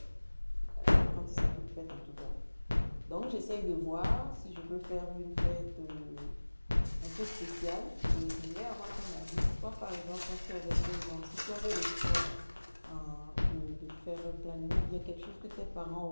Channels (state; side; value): inverted; both; correlation -1.00